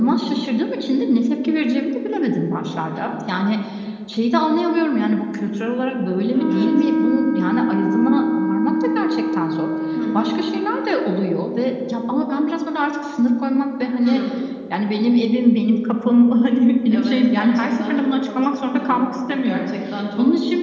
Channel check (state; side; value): identical; both; correlation 1.00